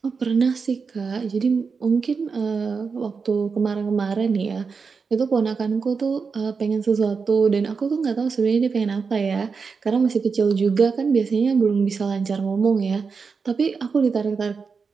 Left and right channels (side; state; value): left; quieter; 5.2 dB